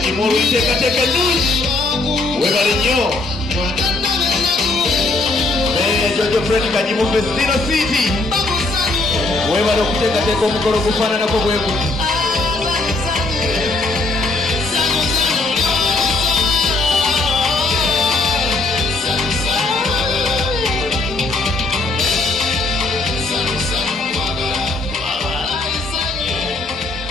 olw'enteekateeka ennungi webale nnyo mmeeya Jojo Friend Kadimu Festina City webale okuteekateeka omukolo gufaananako bwe guti.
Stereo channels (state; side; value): quieter; right; 3.1 dB